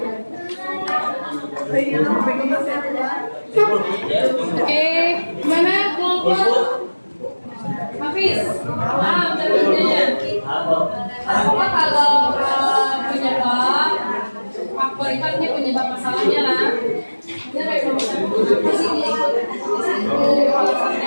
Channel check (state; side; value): inverted; both; correlation -1.00